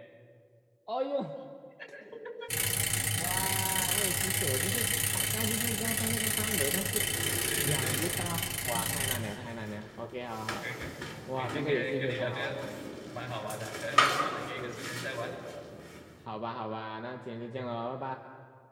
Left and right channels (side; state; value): both; identical; correlation 1.00